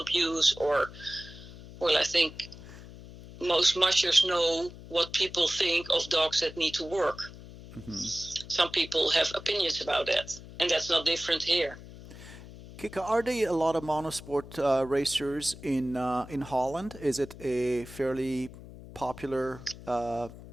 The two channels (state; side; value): noise; left; hum, 16 dB below the sound